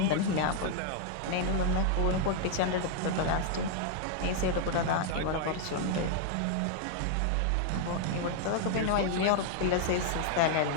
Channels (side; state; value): both; different; correlation 0.00